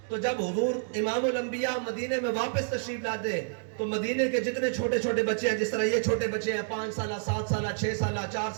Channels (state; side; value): silent; left; digital silence